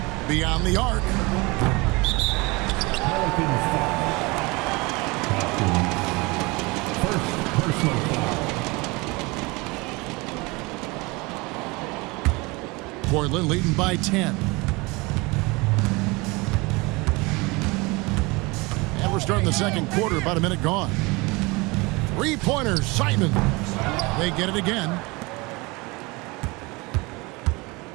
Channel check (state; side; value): quieter; left; 25.1 dB